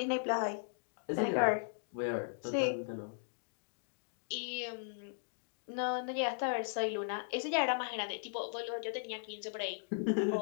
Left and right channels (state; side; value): silent; right; digital silence